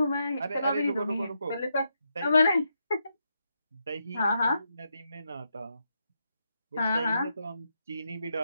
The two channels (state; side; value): inverted; both; correlation -0.82